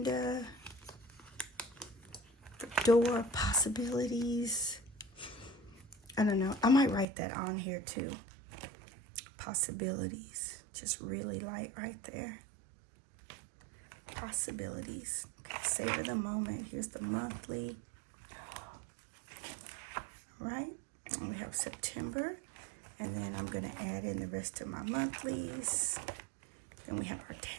The door possibilities. I don't know. I might write that on here too. Possibilities. Just really light right there. Possibilities. Okay, savor the moment. Here's the monthly. All right. And we have September. And then I'm going to add in the rest of my monthlies. Then we have our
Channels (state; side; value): drops out; left; at 7.1 s